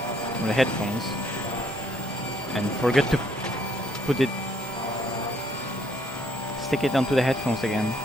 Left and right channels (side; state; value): both; normal; correlation 0.68